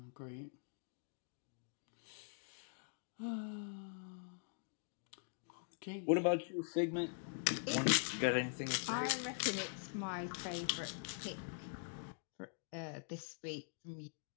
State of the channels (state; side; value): silent; right; digital silence